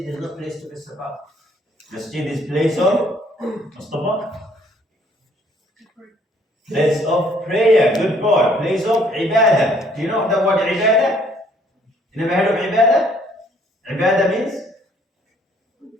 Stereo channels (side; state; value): both; normal; correlation 0.62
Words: is not place to mess about. Masjid is place of Mustafa? Place of prayer. Good boy. Place of ibadah. Do you know the word ibadah? You never heard of ibadah? Ibadah means